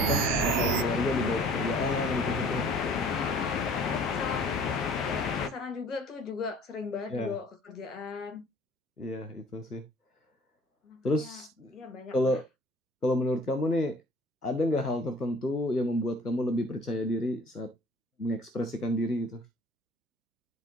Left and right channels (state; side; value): normal; both; correlation 0.51